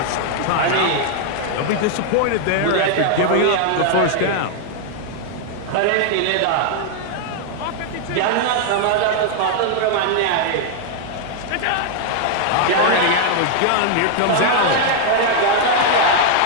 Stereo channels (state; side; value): different; both; correlation 0.00